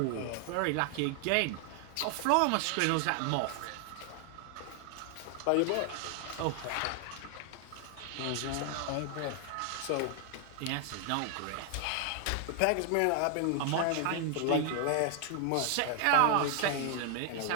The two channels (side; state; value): both; different; correlation 0.00